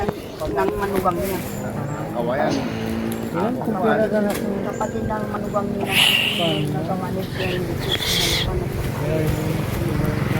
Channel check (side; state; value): both; identical; correlation 1.00